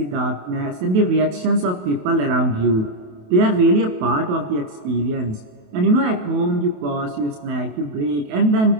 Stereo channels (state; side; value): late; left; 28 ms